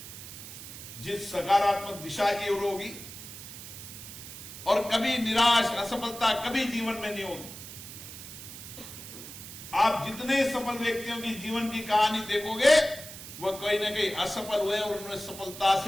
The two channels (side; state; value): right; noise; hiss, 12 dB below the sound